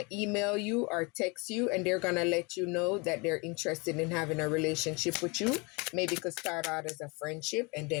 email you or text you, and they're going to let you know that they're interested in having a relationship with you. Maybe it could start out as a friendship and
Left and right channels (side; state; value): right; quieter; 29.0 dB